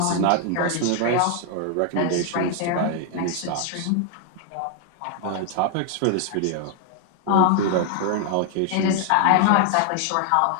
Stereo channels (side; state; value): both; different; correlation 0.00